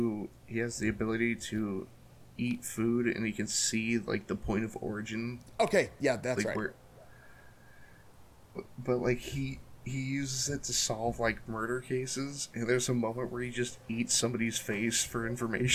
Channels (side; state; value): both; identical; correlation 1.00